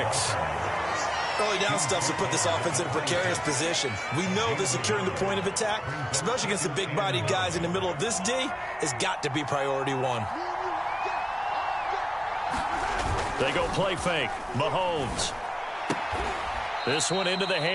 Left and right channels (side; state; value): both; identical; correlation 1.00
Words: Early down stuff to put this offense in a precarious position. We know that securing the point of attack, especially against the big-bodied guys in the middle of this D, has got to be priority one. They go play fake. Mahomes. This one into the